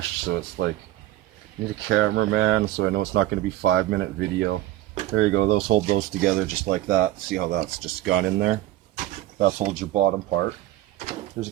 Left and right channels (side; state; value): left; quieter; 15.1 dB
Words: so it's like, I need a cameraman, so I know it's not going to be 5-minute video. There you go, those hold those together just like that. See how that's just gone in there? That holds your bottom part. There's a